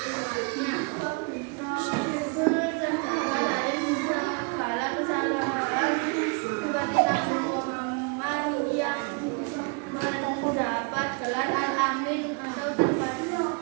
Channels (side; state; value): left; quieter; 33.3 dB